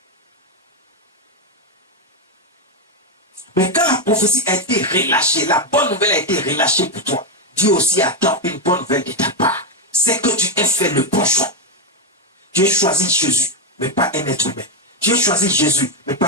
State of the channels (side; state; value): both; normal; correlation 0.05